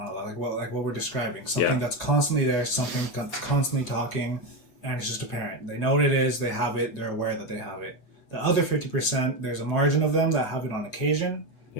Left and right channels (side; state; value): right; late; 8.0 ms